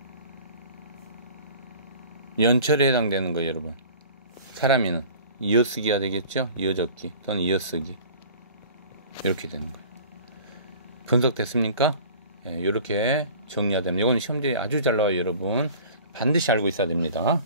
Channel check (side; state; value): both; inverted; correlation -0.44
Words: 연철에 해당되는 거예요, 여러분. 사람이는 이어쓰기가 되겠죠? 이어적기 또는 이어쓰기. 이렇게 되는 거예요. 분석됐습니까? 예, 이렇게 정리가 됩니다. 이건 시험지에 아주 잘 나와요, 여러분. 반드시 알고 있어야 됩니다.